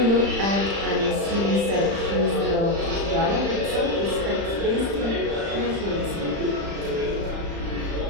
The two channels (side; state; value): left; late; 35 ms